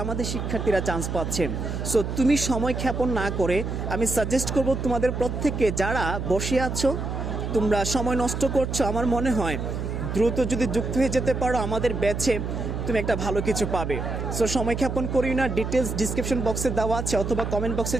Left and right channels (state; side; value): noise; right; hum, 4 dB below the sound